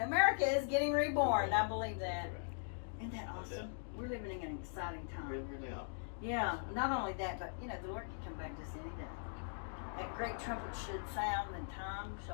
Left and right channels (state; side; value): silent; right; digital silence